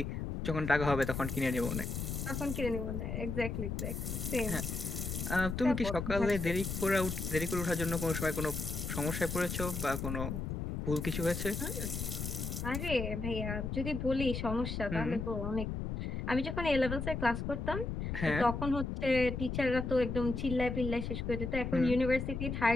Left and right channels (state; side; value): noise; left; rumble, 3 dB below the sound